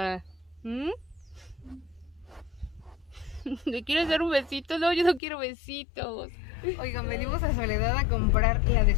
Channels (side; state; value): right; drops out; at 5.2 s